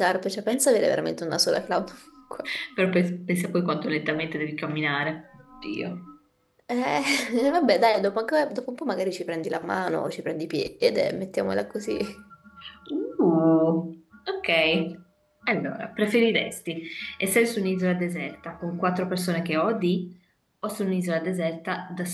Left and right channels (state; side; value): identical; both; correlation 1.00